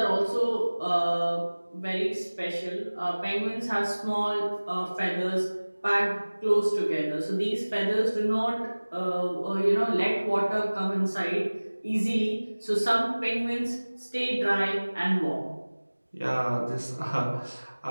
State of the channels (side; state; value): both; inverted; correlation -1.00